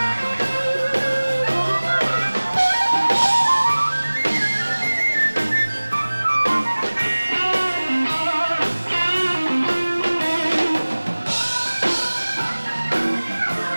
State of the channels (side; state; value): both; inverted; correlation -1.00